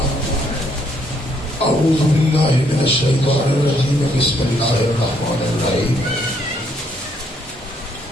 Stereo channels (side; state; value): both; normal; correlation 0.70